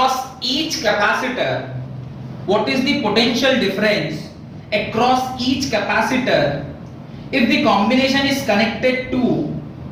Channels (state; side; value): identical; both; correlation 1.00